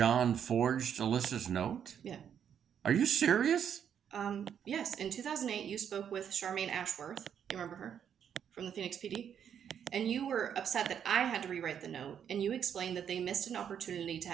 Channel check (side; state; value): left; quieter; 8.5 dB